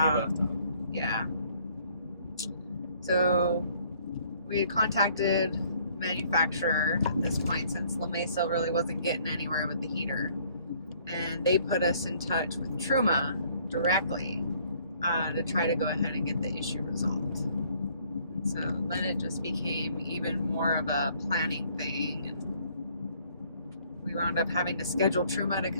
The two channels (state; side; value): inverted; both; correlation -0.61